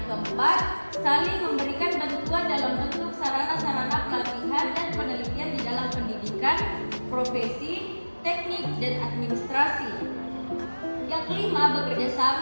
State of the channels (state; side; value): inverted; both; correlation -1.00